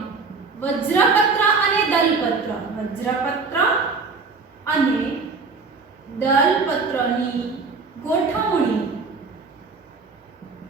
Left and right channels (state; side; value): quieter; left; 4.5 dB